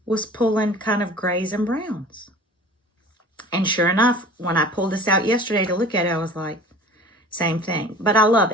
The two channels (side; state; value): both; normal; correlation 0.43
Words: was pulling kind of grays and browns. And sure enough, when I pulled this out yesterday to look at it, I was like, same thing. But I love